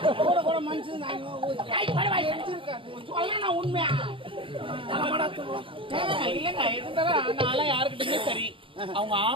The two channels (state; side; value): late; left; 0.25 ms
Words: கூட கூட மனுஷன் சொல்ல நான் உண்மையா இல்லங்க. இருந்தாலும் நான் யாருக்கிட்டயுமே சரி, அவங்க